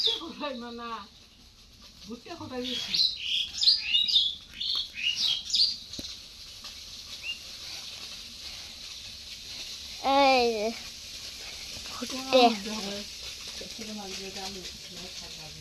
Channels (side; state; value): both; identical; correlation 1.00